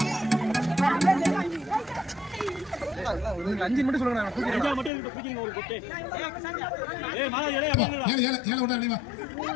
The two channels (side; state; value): right; drops out; at 4.9 s